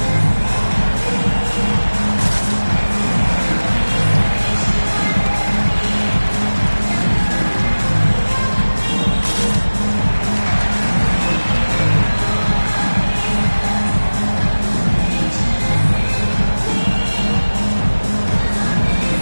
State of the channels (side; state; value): both; inverted; correlation -1.00